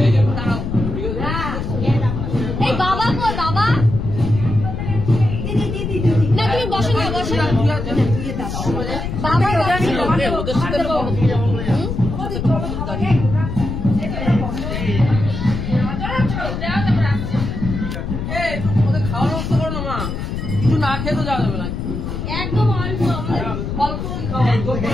এই বাবা কই বাবা? না তুমি বসো না, বসো না বাবা। খেতে যাওয়া যাবে না একদম অল্প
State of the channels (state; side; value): noise; left; rumble, 4 dB below the sound